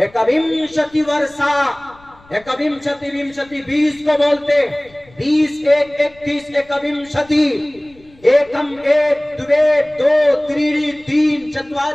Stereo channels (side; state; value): left; noise; rumble, 28 dB below the sound